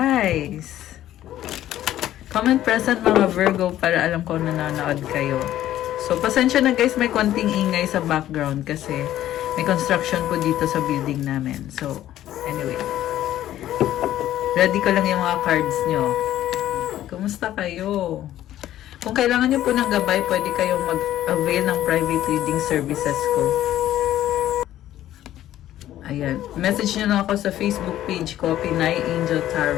Comment present mga Virgo para alam ko na nanonood kayo. So, pasensya na guys, may konting ingay sa background kasi may construction po dito sa building namin. So, anyway. Ready ko lang yung mga cards nyo. Kumusta kayo? Kung kailangan nyo po ng gabay, pwede kayong mag-avail ng private reading services ko. Ayan. Message nyo lang ako sa Facebook page ko, Pinay Angel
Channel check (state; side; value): quieter; right; 12.9 dB